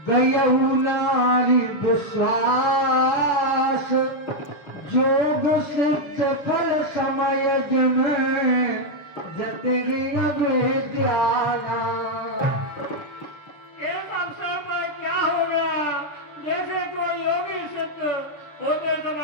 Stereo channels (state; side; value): late; right; 6.9 ms